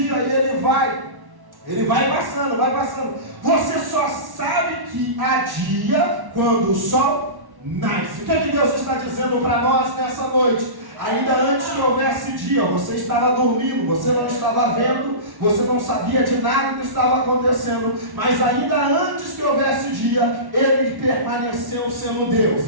e ele vai passando, vai passando. Você só sabe que há dia quando o sol nasce. O que é que Deus está dizendo para nós nessa noite? Ainda antes que houvesse dia, você estava dormindo, você não estava vendo, você não sabia de nada que estava acontecendo, mas ainda antes que houvesse dia, Ele permaneceu sendo Deus,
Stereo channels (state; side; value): late; left; 1.1 ms